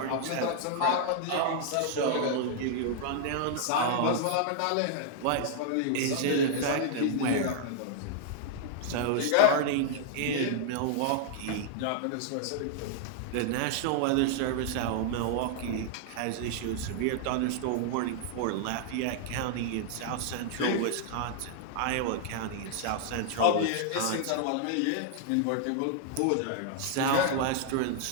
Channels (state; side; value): different; both; correlation -0.01